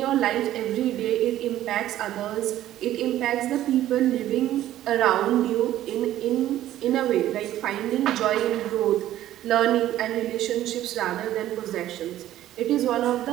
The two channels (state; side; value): quieter; left; 13.2 dB